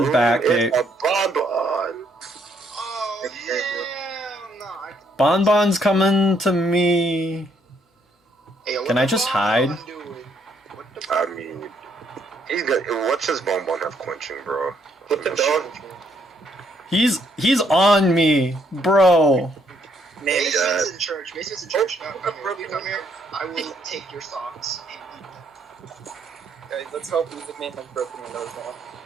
back. It's a bonbon. Oh, yeah. No, Bonbon's coming to me. Hey, what Can the I just Bonbon hide? doing? What the I mean, he's got. What's his bonbon have quenching, bro? What the dog? He's on me, bro. Man, Mason's in church. Mason's in church. No, come here. Come here. I will take your socks and eat them. guys, let's hope Music Man has broken windows now.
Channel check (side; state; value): both; normal; correlation 0.70